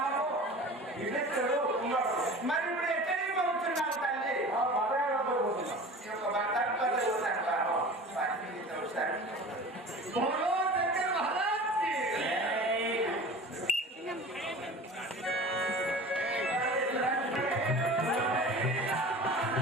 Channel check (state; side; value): normal; both; correlation 0.38